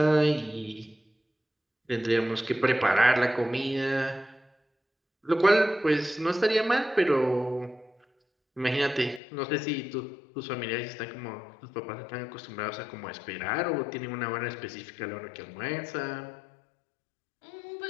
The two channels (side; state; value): right; drops out; at 9.2 s